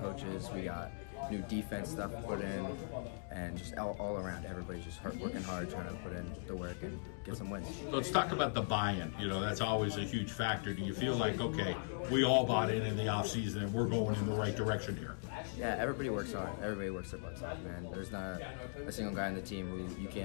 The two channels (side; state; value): right; silent; digital silence